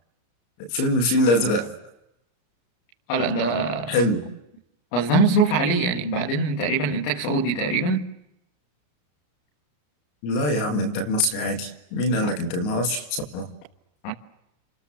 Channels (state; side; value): late; right; 34 ms